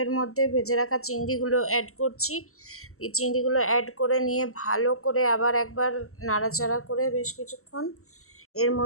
এর মধ্যে ভেজে রাখা চিংড়িগুলো অ্যাড করছি। এই চিংড়িগুলো অ্যাড করে নিয়ে ভালো করে আবার একবার নাড়াচাড়া করে বেশ কিছুক্ষণ এর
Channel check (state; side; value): late; right; 0.63 ms